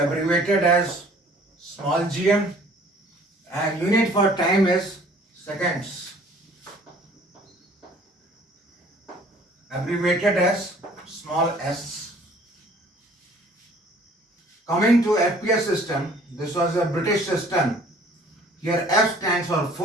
as small gm. And unit for time is seconds, abbreviated as small s. Coming to FPS system, this was a British system. Here F stands for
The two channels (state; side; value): normal; both; correlation 0.54